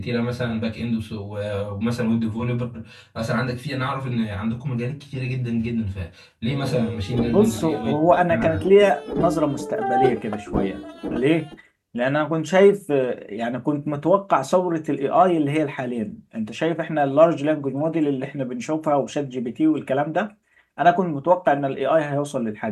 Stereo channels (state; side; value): identical; both; correlation 1.00